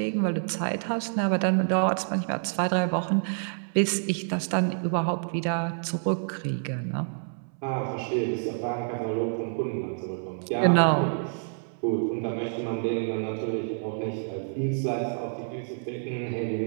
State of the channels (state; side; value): silent; left; 59 dB below the other